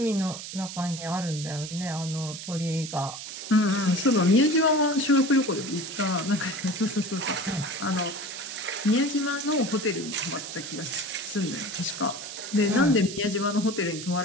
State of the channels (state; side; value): noise; right; hiss, 9 dB below the sound